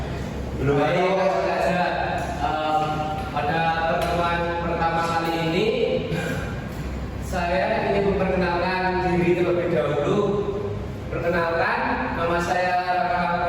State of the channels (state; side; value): identical; both; correlation 1.00